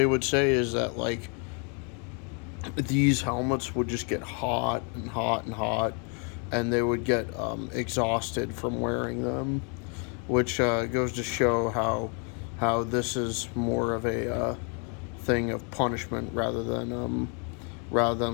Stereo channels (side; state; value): right; quieter; 37.8 dB